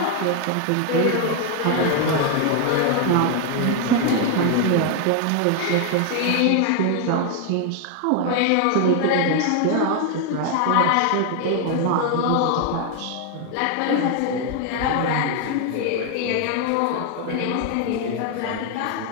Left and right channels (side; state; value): both; different; correlation 0.01